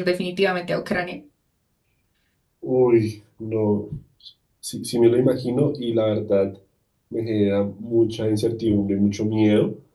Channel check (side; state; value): both; identical; correlation 1.00